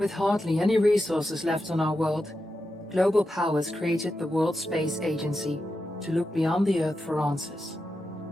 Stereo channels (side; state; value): both; normal; correlation 0.89